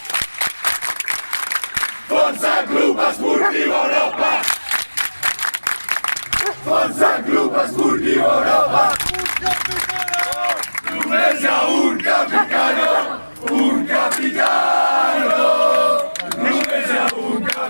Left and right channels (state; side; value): inverted; both; correlation -1.00